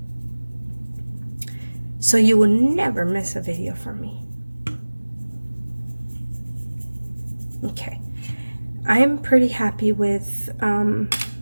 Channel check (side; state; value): both; inverted; correlation -1.00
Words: So you will never miss a video from me. Okay. I'm pretty happy with